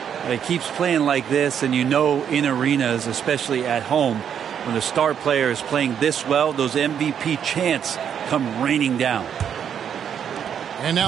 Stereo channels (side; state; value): left; quieter; 8.4 dB